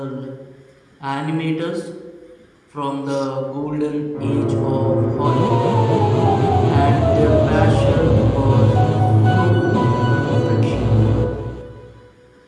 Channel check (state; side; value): identical; both; correlation 1.00